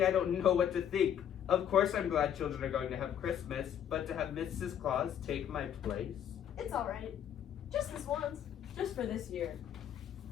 I don't know what to think. Of course I'm glad children are going to have Christmas, but to have Mrs. Claus take my place? It's alright. Just this once. Just for this year.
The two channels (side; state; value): right; quieter; 9.5 dB